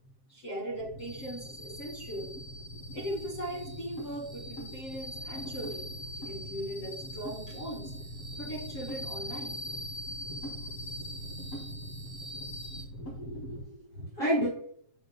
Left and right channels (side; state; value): right; late; 7.5 ms